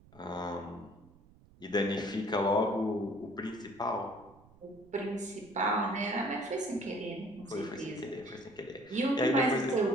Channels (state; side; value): noise; right; rumble, 26 dB below the sound